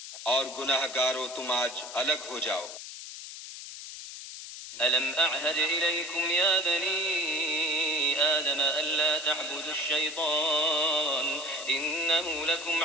اور گناہ گارو تم آج الگ ہو جاؤ. ألم أعهد إليكم يا بني آدم ألا تعبدوا الشيطان إنه لكم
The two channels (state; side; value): noise; left; hiss, 11 dB below the sound